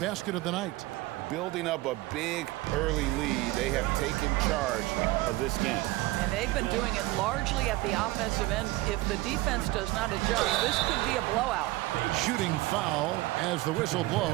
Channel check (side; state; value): left; quieter; 19.2 dB